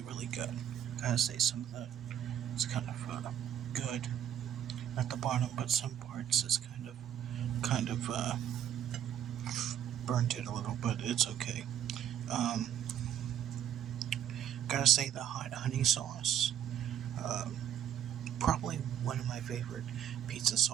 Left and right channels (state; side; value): quieter; left; 10.0 dB